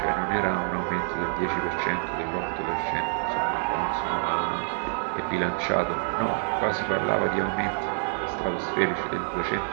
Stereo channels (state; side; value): silent; left; digital silence